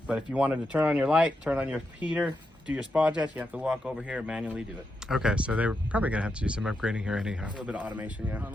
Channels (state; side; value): normal; both; correlation 0.85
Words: But if you wanted to turn on your light, turn on your heater, do your spa jets, you have to walk over here and manually do it. Okay, so they were probably going to have to do some upgrading here anyhow. A little bit of automation, yeah. I don't